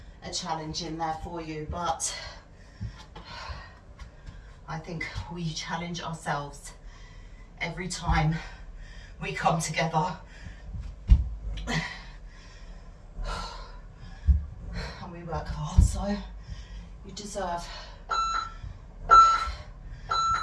a challenge in there for you, but I think we challenge ourselves every time we come together. And we work hard, so you deserve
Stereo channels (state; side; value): identical; both; correlation 1.00